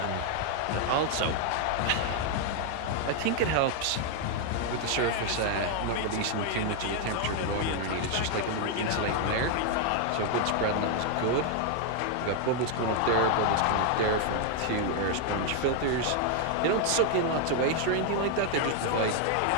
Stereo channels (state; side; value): different; both; correlation 0.00